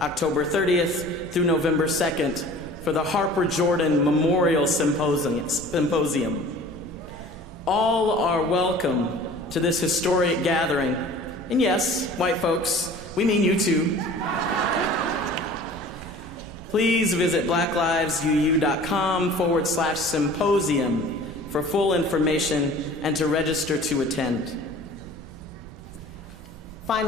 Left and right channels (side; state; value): both; normal; correlation 0.45